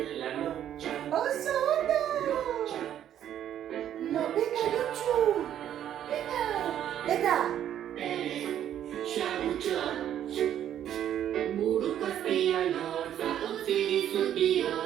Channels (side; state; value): left; quieter; 10.6 dB